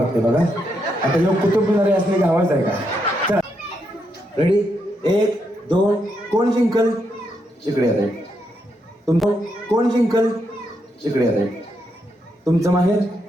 बघा. आता योग कुतुब मिनारे असले की आवाज आहे का? चला रेडी. 1 2. कोण जिंकल? इकडे येत. तुमचं कोण जिंकल? इकडे येत. तुमचं माहेर?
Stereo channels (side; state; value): both; normal; correlation 0.80